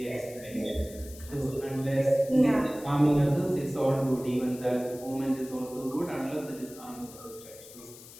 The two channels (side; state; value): left; noise; hiss, 18 dB below the sound